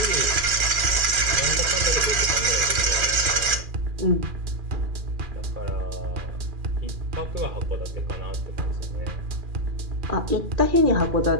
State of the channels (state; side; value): late; left; 2.4 ms